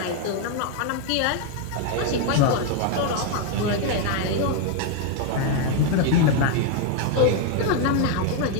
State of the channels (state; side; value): different; both; correlation 0.01